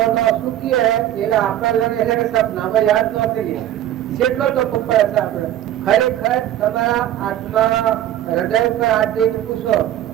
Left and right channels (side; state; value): left; quieter; 12.3 dB